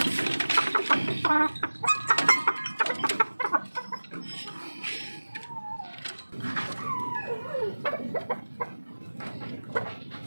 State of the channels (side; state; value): both; inverted; correlation -1.00